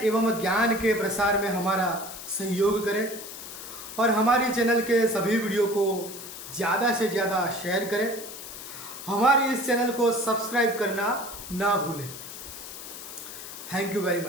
एवं ज्ञान के प्रसार में हमारा सहयोग करें और हमारी चैनल के सभी वीडियो को ज़्यादा से ज़्यादा शेयर करें। हमारे इस चैनल को सब्सक्राइब करना ना भूलें। Thank you very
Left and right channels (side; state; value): left; noise; hiss, 11 dB below the sound